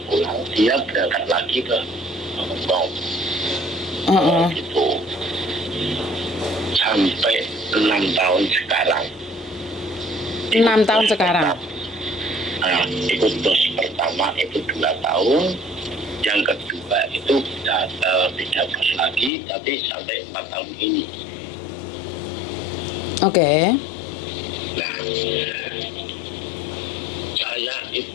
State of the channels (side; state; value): right; drops out; at 19.3 s